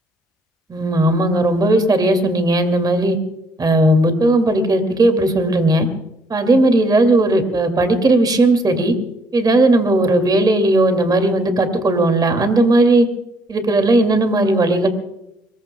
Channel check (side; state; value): both; normal; correlation 0.67